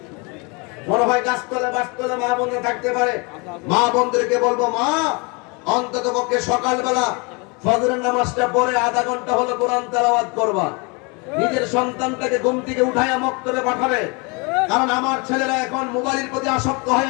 মনে হয় গাছতলা বাসতলা মা বোন থাকতে পারে মা বোনদেরকে বলবো মা অন্তত পক্ষে সকালবেলা ফজরের নামাজটা পড়ে আধা ঘন্টা হলো কোরআন তেলাওয়াত করবা নিজের সন্তানটাকে ঘুম থেকে উঠাইয়া মক্তবে পাঠাবে কারণ আমার ছেলেরা এখন মোবাইলের প্রতি আসক্ত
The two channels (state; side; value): quieter; right; 30.3 dB